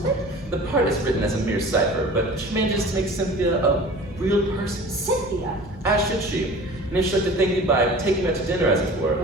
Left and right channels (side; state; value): both; normal; correlation 0.41